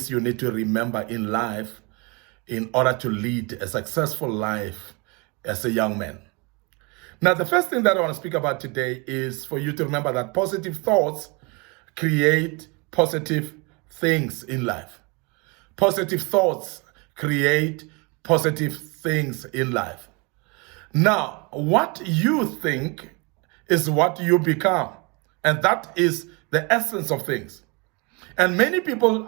you need to remember in life in order to lead a successful life as a young man. Now, the first thing that I want to speak about today is for you to remember that positive thoughts create positive things in life. Positive thoughts create positive things in life. Now, what you think is what you become, and that is the essence of things. And many people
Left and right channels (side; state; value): left; quieter; 29.4 dB